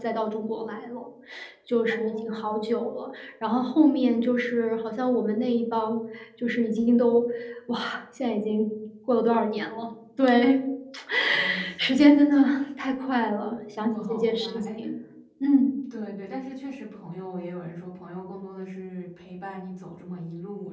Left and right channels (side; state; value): both; identical; correlation 1.00